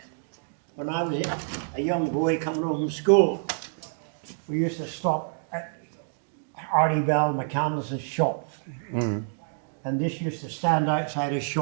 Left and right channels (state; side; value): silent; left; digital silence